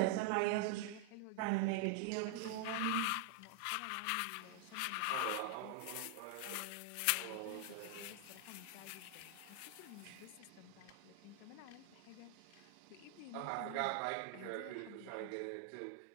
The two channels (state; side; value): different; both; correlation 0.00